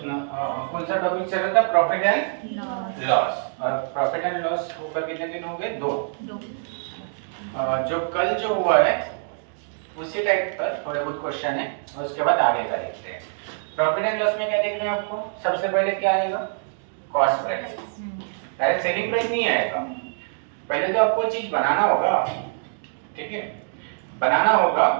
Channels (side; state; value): left; silent; digital silence